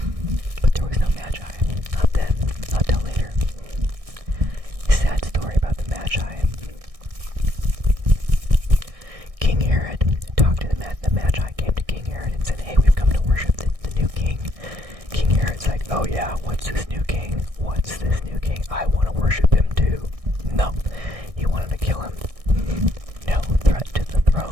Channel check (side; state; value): left; late; 1.6 ms